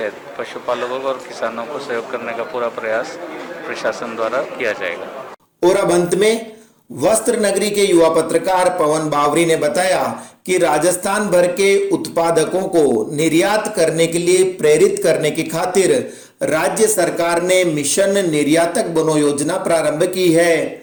पशुपालकों और किसानों को सहयोग करने का पूरा प्रयास प्रशासन द्वारा किया जाएगा। और अब अंत में वस्त्र नगरी के युवा पत्रकार पवन बावरी ने बताया कि राजस्थान भर के उत्पादकों को निर्यात करने के लिए प्रेरित करने की खातिर राज्य सरकार ने मिशन निर्यातक बनो योजना प्रारंभ की है।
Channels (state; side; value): identical; both; correlation 1.00